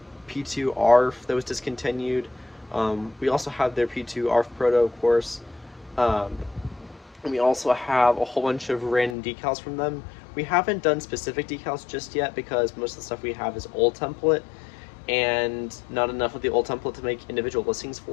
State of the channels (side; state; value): right; drops out; at 9.2 s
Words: P2 ARF that was discontinued. We also have their P2 ARF proto, of course. And we also have a whole bunch of random decals from them. We haven't done specific decals just yet because most of the stuff we have is old template, and not enough of the old template to make individual listings